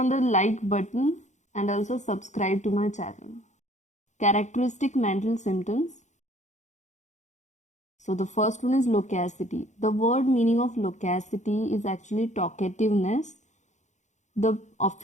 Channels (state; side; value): late; right; 0.35 ms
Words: the like button and also subscribe to my channel. Characteristic mental symptoms. So the first one is loquacity. The word meaning of loquacity is actually talkativeness. The